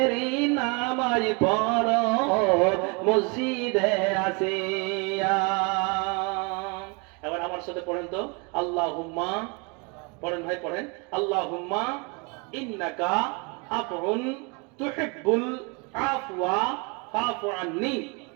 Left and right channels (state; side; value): quieter; left; 31.5 dB